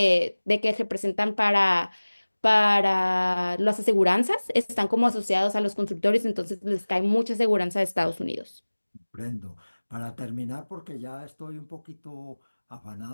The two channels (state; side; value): inverted; both; correlation -1.00